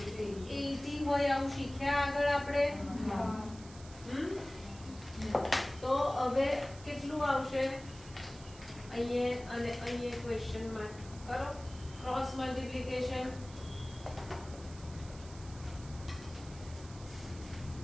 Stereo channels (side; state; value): right; noise; hiss, 19 dB below the sound